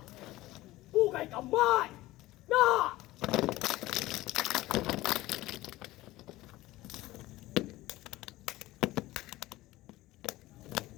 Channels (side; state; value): right; quieter; 17.6 dB